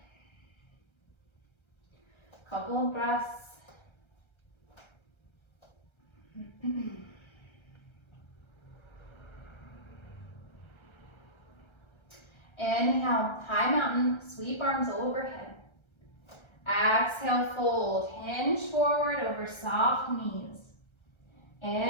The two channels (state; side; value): late; right; 1.3 ms